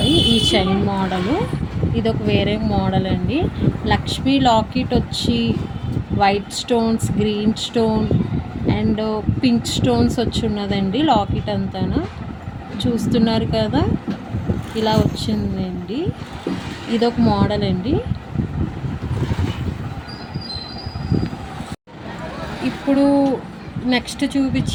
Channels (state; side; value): identical; both; correlation 1.00